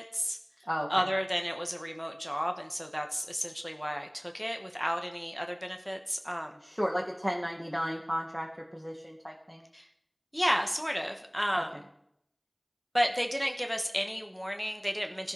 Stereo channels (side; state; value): both; identical; correlation 1.00